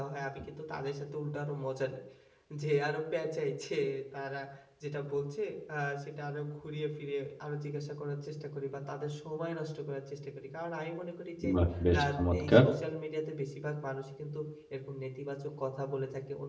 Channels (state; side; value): identical; both; correlation 1.00